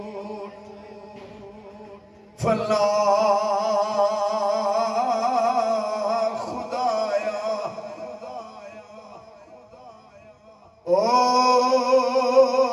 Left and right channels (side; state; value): both; identical; correlation 1.00